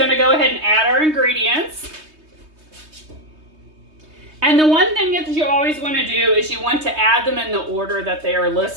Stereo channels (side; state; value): left; late; 3.2 ms